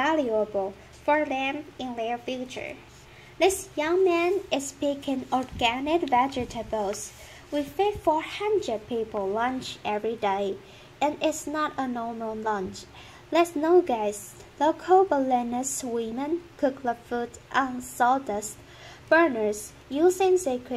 for them in their future. This young man is picking organic vegetables. We feed 400 people lunch every day, and it's not a normal lunch. Let's know, guys. Local Balinese women cook the food on sawdust burners using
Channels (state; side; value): identical; both; correlation 1.00